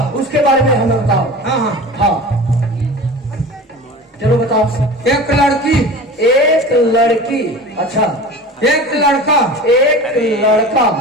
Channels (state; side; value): normal; both; correlation 0.35